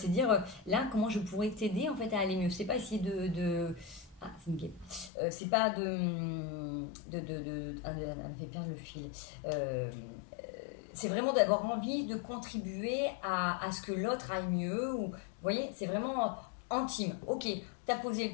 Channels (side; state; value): right; drops out; at 5.1 s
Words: dire là comment je pourrais t'aider en fait à aller mieux. C'est pas essayer ah, c'est une guêpe. C'est pas ah, elle me fait perdre le fil. C'est vraiment d'avoir envie de contribuer à ce que l'autre aille mieux. Ou, vous voyez, c'est vraiment intime. Ok, t'as posé